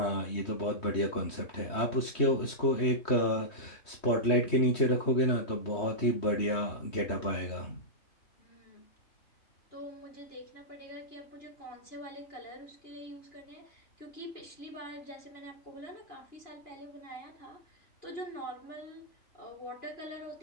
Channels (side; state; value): right; late; 3.2 ms